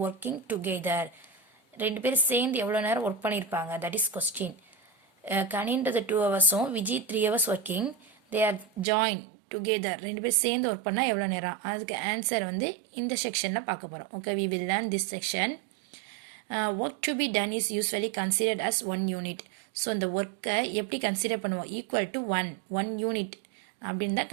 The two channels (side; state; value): left; drops out; at 8.8 s